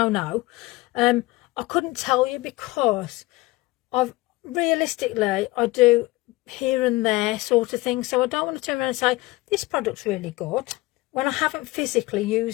know, I couldn't tell you, because realistically I do here and there sort of thing, so I don't want to turn around and say this product's really good when I haven't physically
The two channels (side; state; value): right; quieter; 20.6 dB